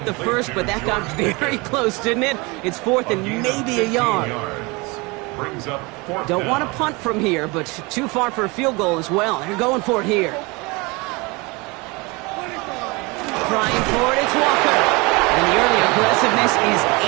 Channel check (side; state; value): left; quieter; 26.2 dB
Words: The first, but that got very close, didn't it? It's 4th and maybe a yard. Brings up 4th Don't down. want to punt from here, but too far for a field goal as well. They're going for it here. Trying for it, it's Walker. And the early aggressiveness is